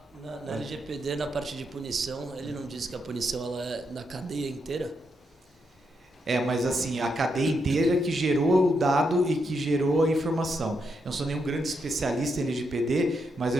Na LGPD, na parte de punição, ele não diz que a punição ela é na cadeia inteira? Mas assim, a cadeia inteira que gerou o dado e que gerou a informação. Eu não sou nenhum grande especialista em LGPD, mas eu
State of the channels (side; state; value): both; normal; correlation 0.81